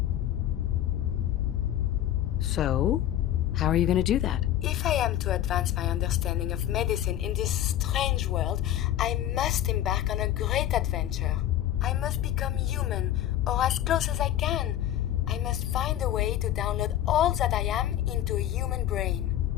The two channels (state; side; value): quieter; right; 12.0 dB